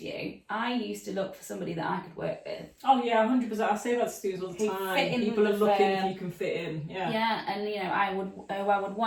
I used to look for somebody that I could work with. Oh yeah, 100%. I say that to students all the time. People are looking if you can fit in. Yeah. Yeah, and you know, I would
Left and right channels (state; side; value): identical; both; correlation 1.00